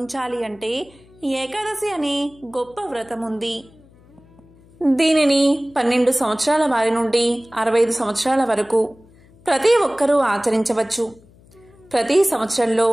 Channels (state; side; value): noise; left; hum, 27 dB below the sound